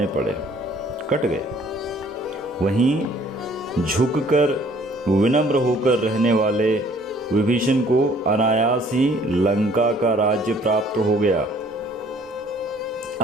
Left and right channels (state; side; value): normal; both; correlation 0.58